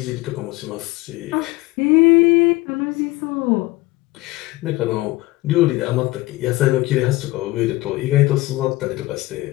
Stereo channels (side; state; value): right; quieter; 19.8 dB